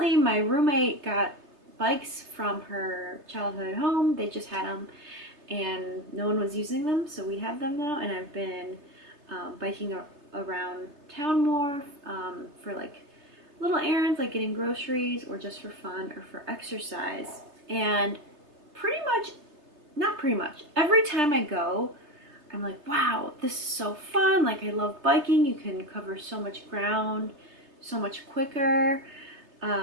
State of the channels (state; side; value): late; left; 3.3 ms